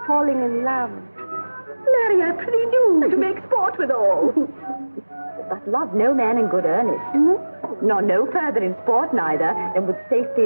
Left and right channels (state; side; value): inverted; both; correlation -1.00